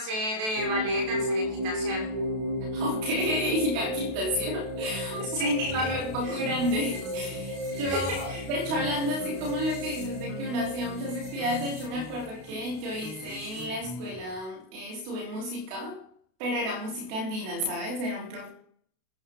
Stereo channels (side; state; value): left; late; 32 ms